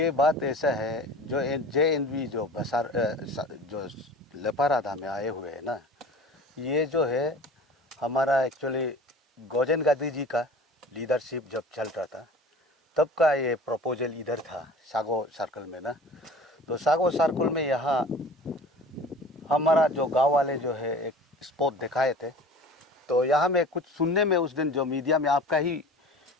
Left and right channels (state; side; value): normal; both; correlation 0.41